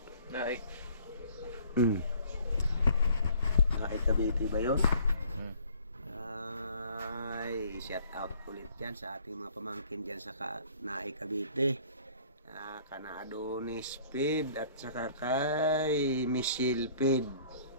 Naik. Naik Cavite ba yun? Ay, shout out ulit dyan sa ating mga pamangkin dyan sa Naik Cavite. Kana Adonis Pid at saka kay Michelle Pid.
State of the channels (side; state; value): both; inverted; correlation -0.56